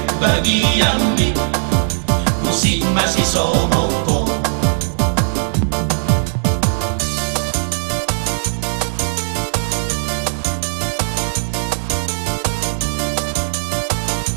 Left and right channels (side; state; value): left; silent; digital silence